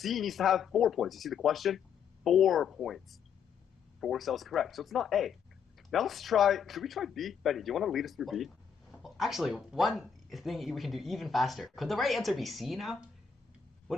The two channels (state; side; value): quieter; right; 7.0 dB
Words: needs to have 4 points. You see the question? 4 points. 4 cells correct. So it's not A. Now let's try, should we try B? Benny, do you want to lead us through B? Well, actually, one thing we can do even faster. Could the right answer be C now?